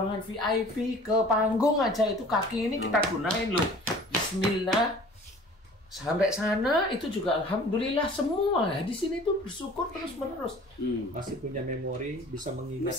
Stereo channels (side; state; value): both; normal; correlation 0.47